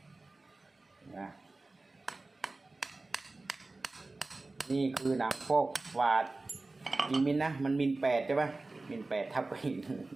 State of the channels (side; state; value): left; quieter; 3.3 dB